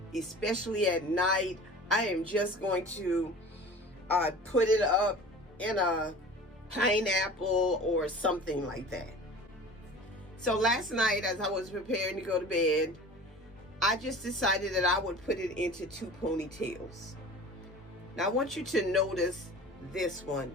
especially at night. I am just going to put it up in a pineapple or something like that. So last night, as I was preparing to go to bed, I just decided that I would put it into 2 ponytails. Now I want you to notice this one.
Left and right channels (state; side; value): normal; both; correlation 0.40